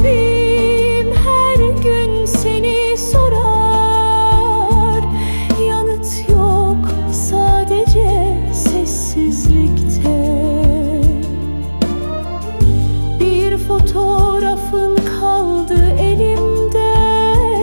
her gün seni sorar, yanıt yok sadece sessizlikte. Bir fotoğrafın kaldı elimde,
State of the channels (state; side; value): inverted; both; correlation -1.00